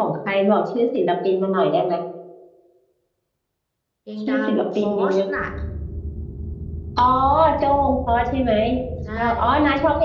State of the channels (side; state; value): both; identical; correlation 1.00